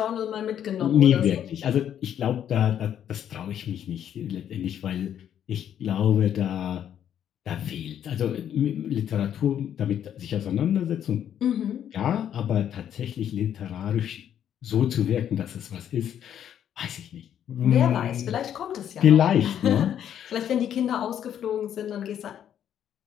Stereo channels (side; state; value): right; quieter; 9.8 dB